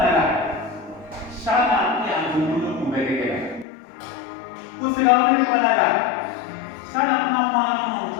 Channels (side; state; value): right; drops out; at 3.7 s